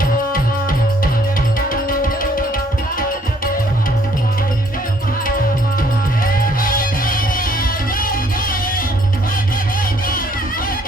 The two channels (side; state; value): both; normal; correlation 0.64